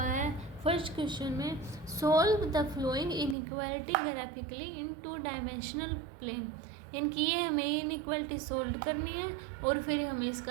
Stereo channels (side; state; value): left; drops out; at 3.4 s